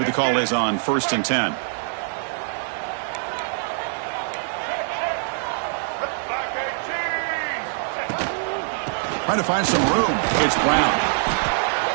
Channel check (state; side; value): silent; left; digital silence